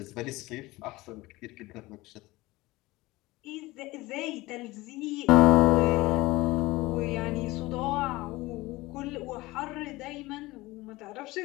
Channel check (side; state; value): right; quieter; 20.2 dB